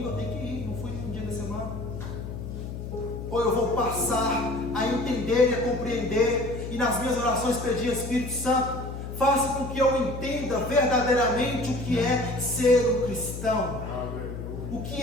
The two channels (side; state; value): left; noise; hum, 7 dB below the sound